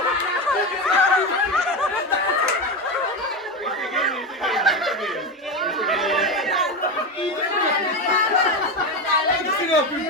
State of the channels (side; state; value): both; normal; correlation 0.17